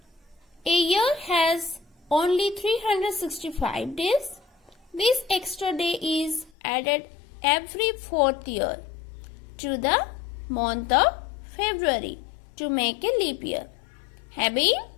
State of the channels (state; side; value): drops out; right; at 6.5 s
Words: A year has only 365 days. This extra day is added every 4th year to the month of February to make a leap year, having